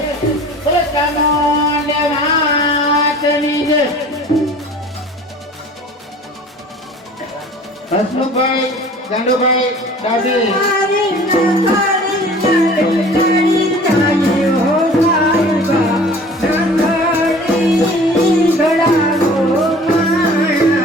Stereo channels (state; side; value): normal; both; correlation 0.45